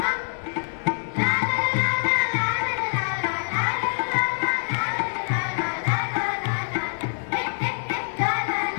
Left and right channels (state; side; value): silent; right; digital silence